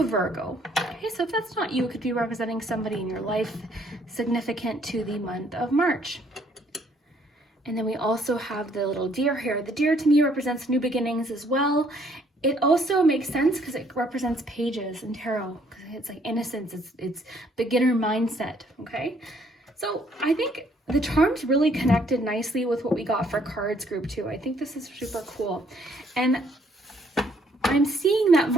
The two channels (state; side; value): normal; both; correlation 0.65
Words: Virgo. Okay, so if that's not you, it could be representing somebody in your life significant to the month of March. And then we also have the little deer here. The deer to me represents new beginnings as well. It also makes sense because it represents pages in tarot. It's like innocence, it's beginner mindset, okay? So I think the charms really connected nicely with what we got for cards group 2. I think this is super cool. And I'm seeing that